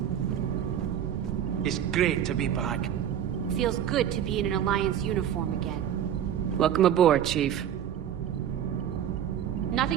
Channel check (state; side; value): quieter; left; 9.9 dB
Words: It's great to be back. Feels good to be in an Alliance uniform again. Welcome aboard, Chief.